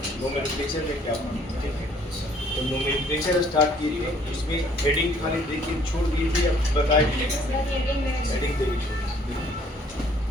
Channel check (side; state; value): both; normal; correlation 0.60